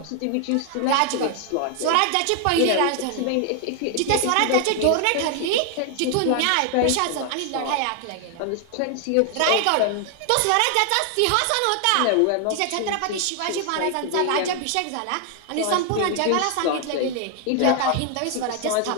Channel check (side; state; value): both; different; correlation 0.00